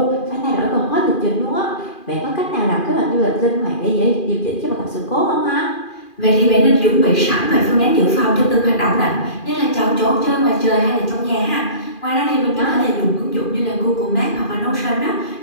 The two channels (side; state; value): right; late; 2.4 ms